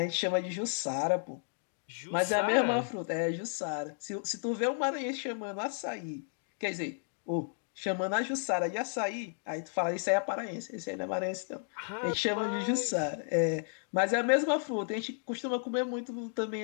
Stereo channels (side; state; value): right; silent; digital silence